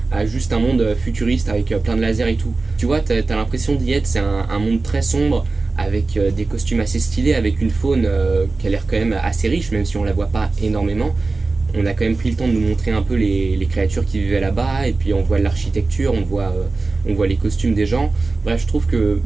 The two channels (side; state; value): left; quieter; 3.7 dB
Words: à juste un monde futuriste avec plein de lasers et tout. Tu vois, t'as l'impression d'y être, c'est un monde très sombre, avec des costumes assez stylés, avec une faune qui a l'air quand même assez riche, même si on la voit pas énormément. On a quand même pris le temps de nous montrer un peu les créatures qui vivaient là-bas, et puis on voit l'architecture, on voit les costumes des gens. Bref, je trouve que